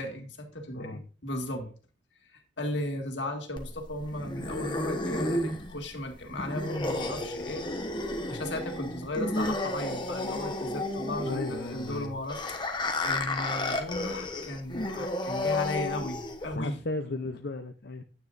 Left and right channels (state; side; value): normal; both; correlation 0.41